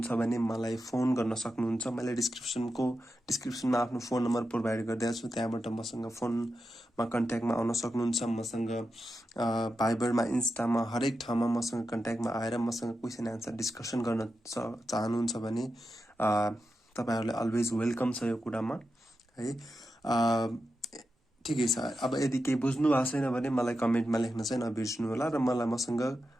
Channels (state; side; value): normal; both; correlation 0.89